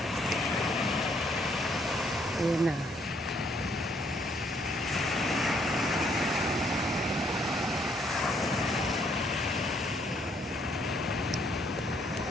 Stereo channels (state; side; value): normal; both; correlation 0.68